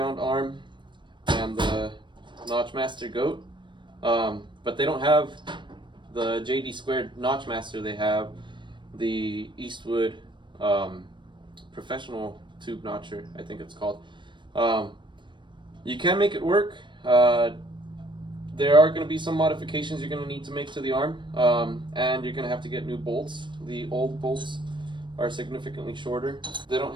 arm and the Notch Master goat, but they don't have the JD2 Notch Master. They have the Eastwood professional tube notcher, I think it's called. You can make it work. There are going to be some modifications you're going to need to make to the arm, and you're going to have to get new bolts. The old bolts are significantly shorter. They don't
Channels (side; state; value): left; late; 0.23 ms